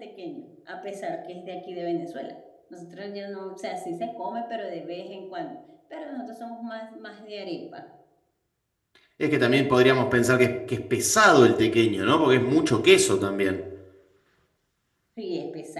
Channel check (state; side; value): identical; both; correlation 1.00